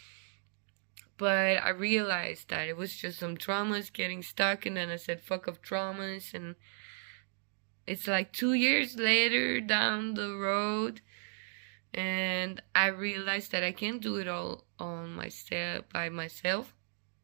But I realized that it was just some traumas getting stuck, and then I said, fuck off traumas, and it's like 2 years later down the road, and I realized that I can't do it all on myself, by myself,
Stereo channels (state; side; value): silent; left; 55 dB below the other